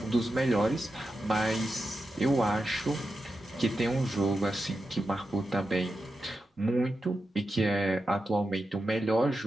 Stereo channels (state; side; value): normal; both; correlation 0.89